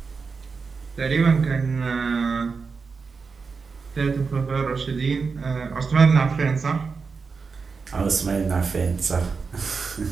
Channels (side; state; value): left; quieter; 5.0 dB